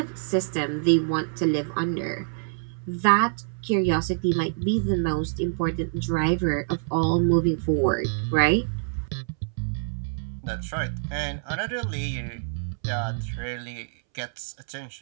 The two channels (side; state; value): left; silent; 61 dB below the other